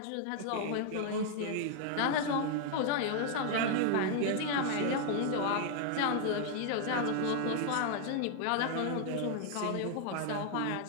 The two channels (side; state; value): both; different; correlation 0.00